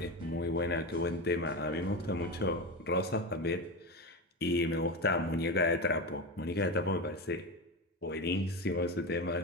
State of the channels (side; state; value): both; normal; correlation 0.20